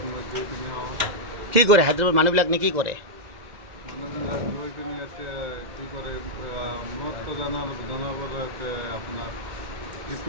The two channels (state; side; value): late; left; 2.1 ms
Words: কি কৰে হায়দৰাবাদ মানুহবিলাক নে কি কৰে?